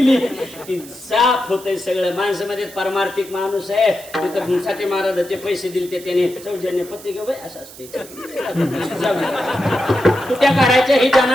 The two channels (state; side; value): noise; right; hiss, 18 dB below the sound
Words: की साफ होतंय सगळं. माणसामध्ये परमार्थिक माणूस आहे. साठी महाराजाचे पैसे दिले त्याने सौजन्य पत्रिका बाई असं असते. तुट्या काढायच्या ही